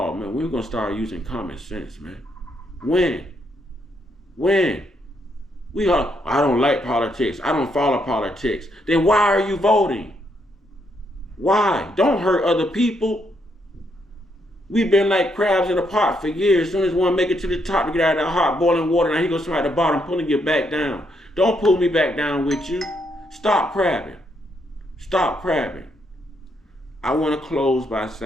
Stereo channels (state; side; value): normal; both; correlation 0.76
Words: man, we're gonna start using common sense, man. When? When? I don't like politics. I don't follow politics. Then why are you voting? Why? Don't hurt other people. We've been like crabs in a pot for years. As soon as one make it to the top to get out of that hot boiling water, now he goes somebody at the bottom pulling you back down. Don't pull me back down with you. Stop crabbing. Stop crabbing. I want to close by